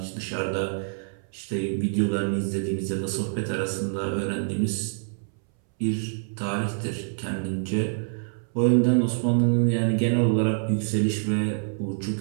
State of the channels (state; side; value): silent; left; 61 dB below the other